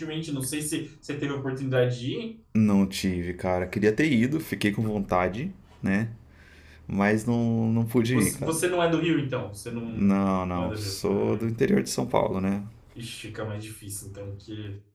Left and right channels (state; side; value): identical; both; correlation 1.00